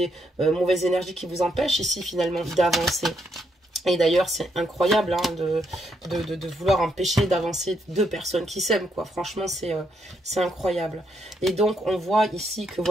mauvaises énergies qui vous empêchent ici finalement d'avancer. Et d'ailleurs, c'est incroyable hein, de vouloir empêcher d'avancer deux personnes qui s'aiment, quoi. Franchement, c'est incroyable. Et donc, on voit ici que,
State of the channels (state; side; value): normal; both; correlation 0.76